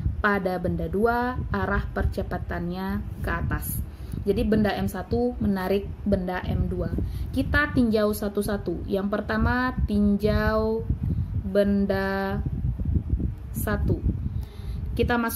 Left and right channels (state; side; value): identical; both; correlation 1.00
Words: pada benda 2 arah percepatannya ke atas. Jadi benda M1 menarik benda M2. Kita tinjau satu-satu. Yang pertama, tinjau benda 1. Kita